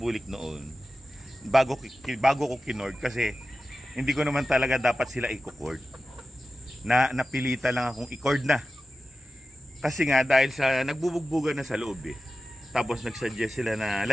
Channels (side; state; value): both; normal; correlation 0.93